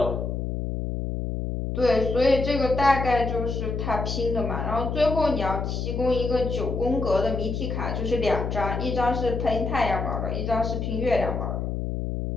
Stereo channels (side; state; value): left; noise; hum, 2 dB below the sound